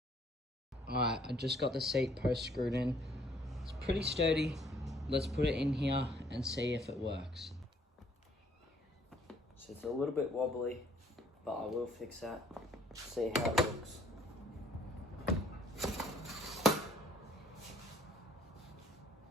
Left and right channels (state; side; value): normal; both; correlation 0.62